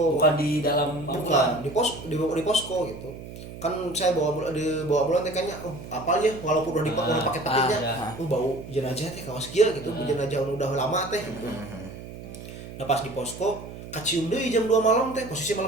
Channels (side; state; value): right; noise; hum, 13 dB below the sound